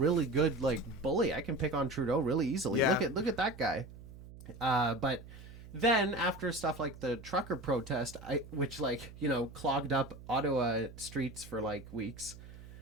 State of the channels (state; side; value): noise; right; hum, 16 dB below the sound